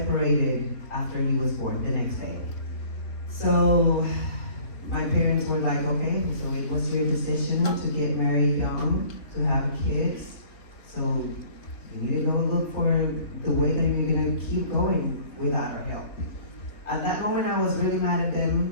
after he was born the next day. So my parents were like, okay, so it was your decision to get married young, to have kids. So you need to go look for the way that you're gonna keep going without our help. At that moment, I was really mad at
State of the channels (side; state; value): right; late; 3.5 ms